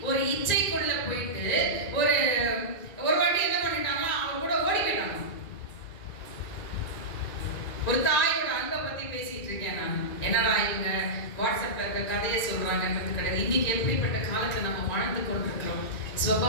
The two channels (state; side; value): late; right; 2.5 ms